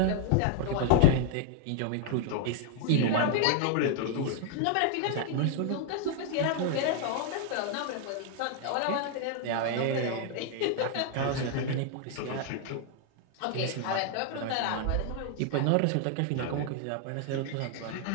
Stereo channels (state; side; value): different; both; correlation 0.00